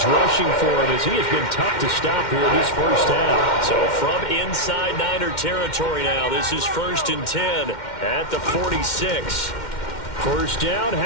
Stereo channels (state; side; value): late; right; 2.1 ms